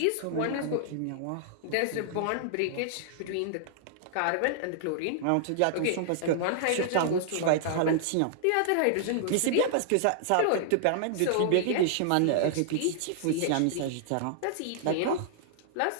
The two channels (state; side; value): different; both; correlation -0.01